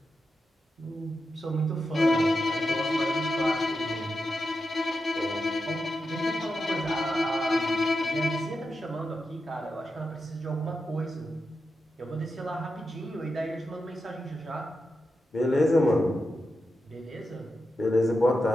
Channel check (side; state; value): both; normal; correlation 0.88